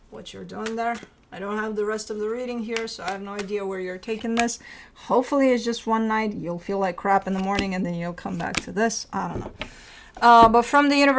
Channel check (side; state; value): both; identical; correlation 1.00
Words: what you're doing there. I don't have the rest of the reading here, so I have no idea where you're taking this. Hopefully it's just one night. You'll feel like crap in the morning, and then you'll come back to this. I don't know. But from the